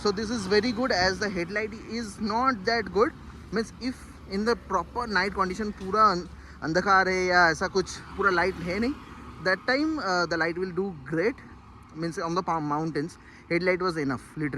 So this is very good as the headlight is not that good. Means if in the proper night condition पूरा अंधकार है या ऐसा कुछ पूरा लाइट है नहीं, that time the light will do great. Means on the mountains headlight was enough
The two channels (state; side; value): identical; both; correlation 1.00